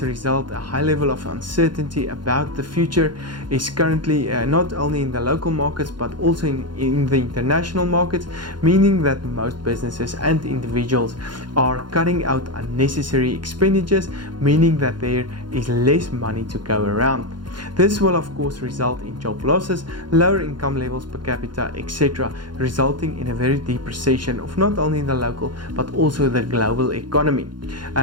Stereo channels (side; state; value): left; late; 0.71 ms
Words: a result, a high level of uncertainty about the future is currently not only in the local markets but also in the international markets, meaning that most businesses and individuals are cutting out unnecessary expenditures, meaning that there is less money to go around. This will of course result in job losses, lower income levels per capita, etc., resulting in a very deep recession of not only the local but also the global economy,